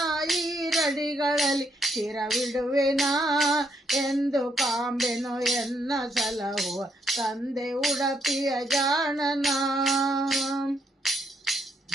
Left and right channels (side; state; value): both; normal; correlation 0.75